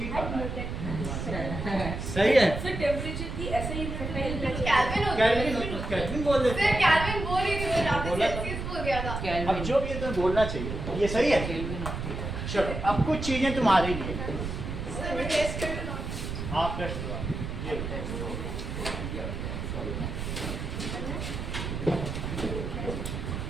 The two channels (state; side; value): noise; right; rumble, 5 dB below the sound